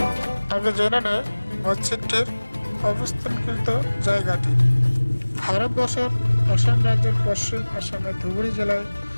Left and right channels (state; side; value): inverted; both; correlation -1.00